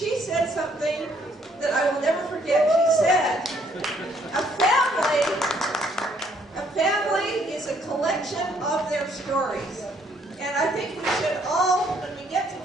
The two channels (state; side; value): normal; both; correlation 0.66